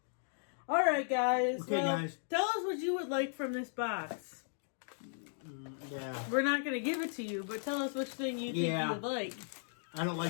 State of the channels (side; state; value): right; silent; digital silence